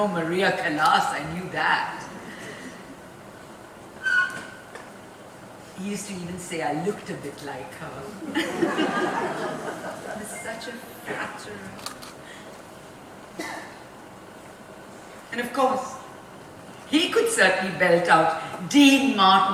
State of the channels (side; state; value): both; identical; correlation 1.00